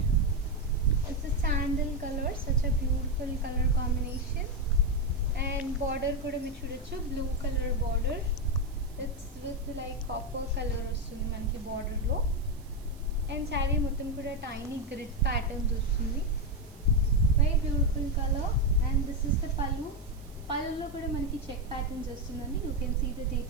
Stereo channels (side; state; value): right; noise; hiss, 26 dB below the sound